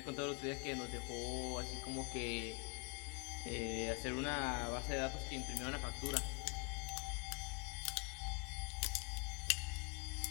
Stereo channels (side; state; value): right; quieter; 32.4 dB